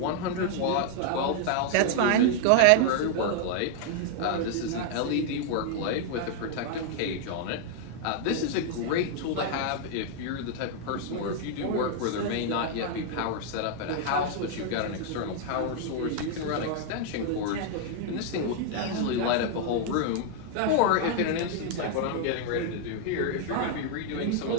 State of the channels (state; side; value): different; both; correlation 0.00